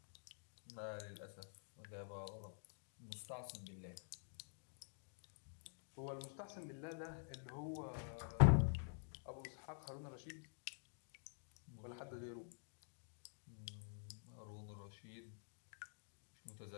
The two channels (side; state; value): right; silent; digital silence